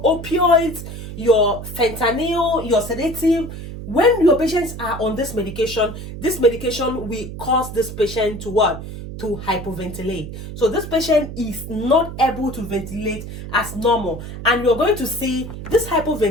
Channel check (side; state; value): right; noise; hum, 10 dB below the sound